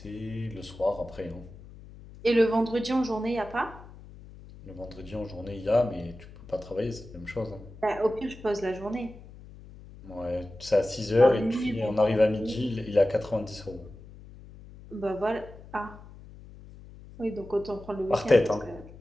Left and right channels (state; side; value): noise; left; hum, 18 dB below the sound